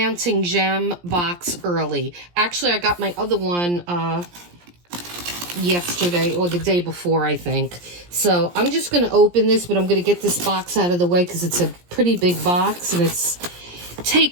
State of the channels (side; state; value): left; late; 17 ms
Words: gem box early. Actually, I got my other one yesterday or the day before, I think. So I'm just going to open this, but I'm going to get this box out of the way because it's a pretty big box and it's